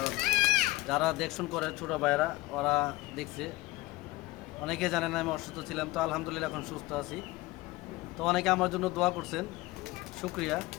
যারা দেখশন করে ছোটো ভাইয়েরা, ওরা দেখছে। অনেকে জানে না আমি অসুস্থ ছিলাম, তো আলহামদুলিল্লাহ এখন সুস্থ আছি। তো অনেকে আমার জন্য দোয়া করছেন, শুক্রিয়া।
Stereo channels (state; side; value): quieter; right; 19.9 dB